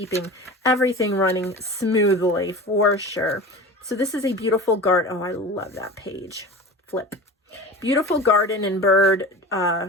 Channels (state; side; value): normal; both; correlation 0.34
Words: everything running smoothly, for sure. So this is a beautiful garden. Oh, I love that page. Flip. Beautiful garden and bird